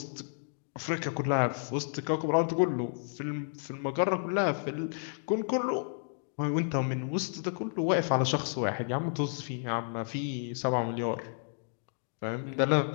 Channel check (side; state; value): right; silent; digital silence